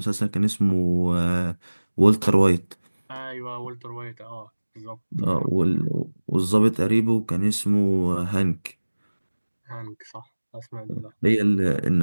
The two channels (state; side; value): inverted; both; correlation -1.00